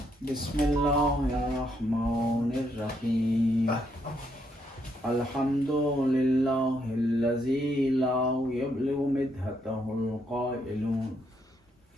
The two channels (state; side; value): normal; both; correlation 0.75